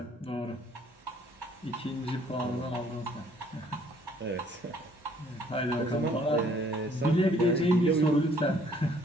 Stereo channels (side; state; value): both; normal; correlation 0.61